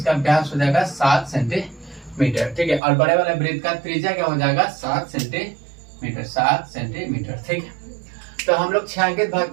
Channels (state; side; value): drops out; left; at 2.8 s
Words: व्यास हो जाएगा 7 सेंटीमीटर। ठीक है, और बड़े वाले वृत्त का त्रिज्या क्या हो जाएगा, 7 सेंटीमीटर। ठीक है, तो हम लोग छायांकित भाग